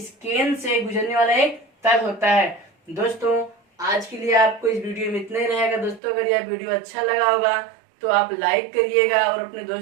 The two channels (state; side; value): drops out; left; at 6.0 s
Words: केंद्र से गुजरने वाला एक तल होता है। दोस्तों आज के लिए आपको इस वीडियो में इतना ही रहेगा। दोस्तों अगर यह वीडियो अच्छा लगा होगा तो आप लाइक करिएगा और अपने